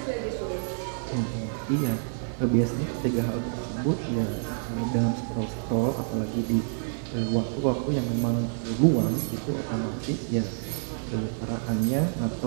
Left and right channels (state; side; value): silent; left; digital silence